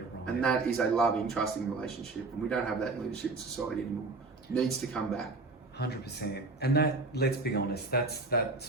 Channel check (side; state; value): left; quieter; 3.6 dB